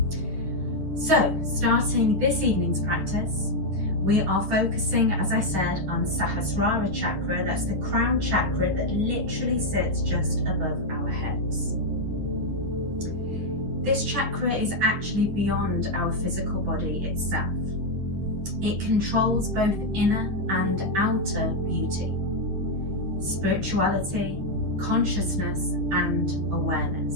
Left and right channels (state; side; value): late; left; 10 ms